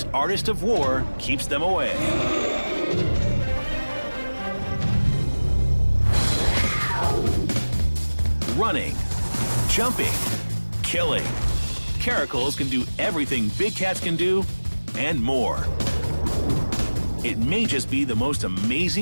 artist of war keeps them away. Running, jumping, killing. Caracals can do everything big cats can do, and more. It may just be the most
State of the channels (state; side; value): inverted; both; correlation -1.00